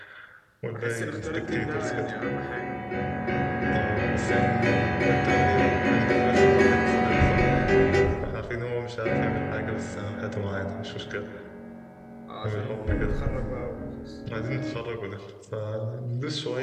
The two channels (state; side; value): identical; both; correlation 1.00